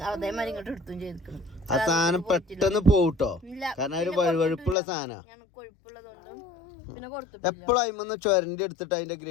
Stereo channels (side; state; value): right; drops out; at 4.8 s